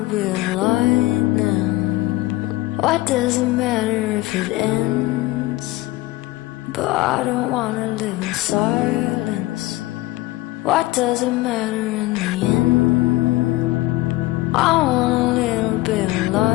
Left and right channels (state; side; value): quieter; right; 18.6 dB